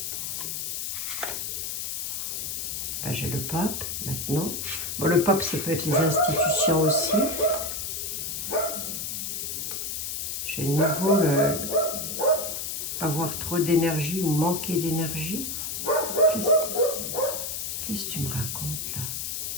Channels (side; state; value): left; noise; hiss, 3 dB below the sound